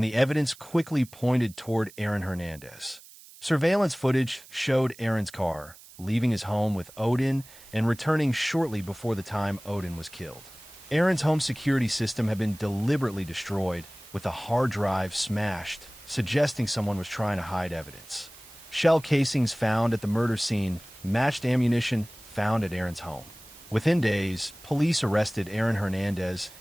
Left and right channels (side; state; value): right; noise; hiss, 21 dB below the sound